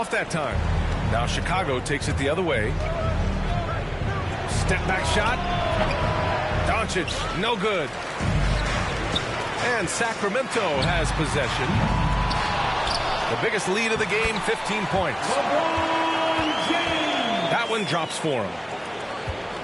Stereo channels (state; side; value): identical; both; correlation 1.00